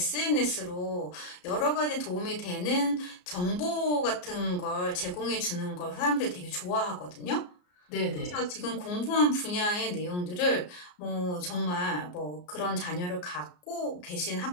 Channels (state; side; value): late; right; 34 ms